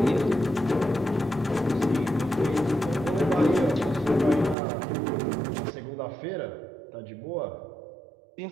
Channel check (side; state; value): left; drops out; at 4.5 s